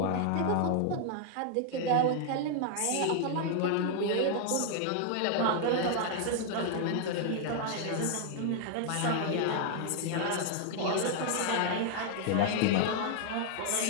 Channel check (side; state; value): both; different; correlation 0.00